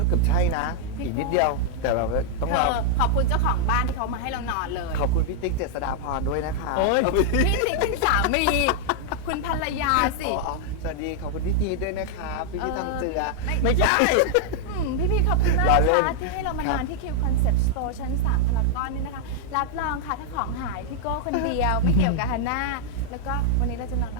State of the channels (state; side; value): different; both; correlation -0.01